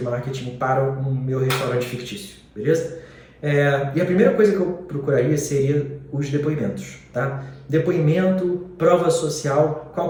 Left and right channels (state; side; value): identical; both; correlation 1.00